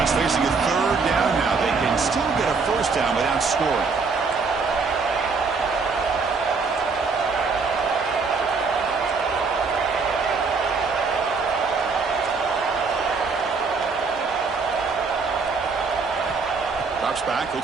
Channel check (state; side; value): quieter; left; 4.7 dB